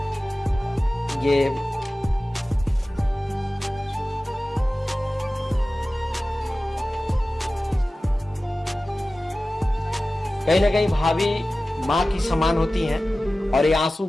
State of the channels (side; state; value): both; normal; correlation 0.96